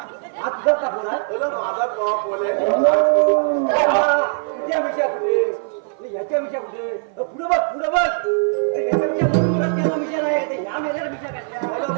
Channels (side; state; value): left; silent; 56 dB below the other